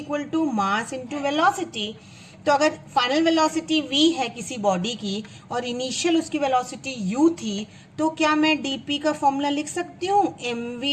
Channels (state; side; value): identical; both; correlation 1.00